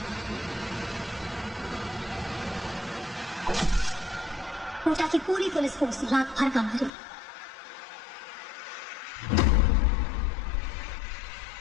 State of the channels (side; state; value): right; drops out; at 6.9 s